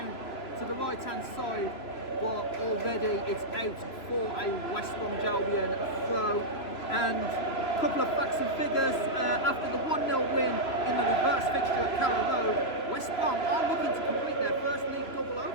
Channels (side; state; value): right; late; 3.0 ms